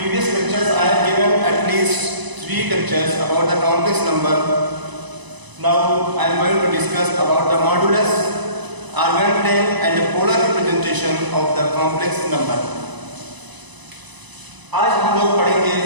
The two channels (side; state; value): left; late; 1.0 ms